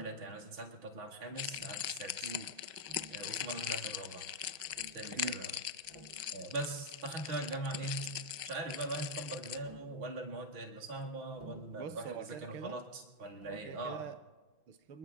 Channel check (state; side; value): late; left; 6.0 ms